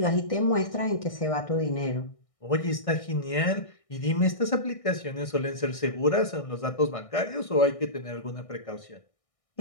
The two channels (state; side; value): late; right; 1.6 ms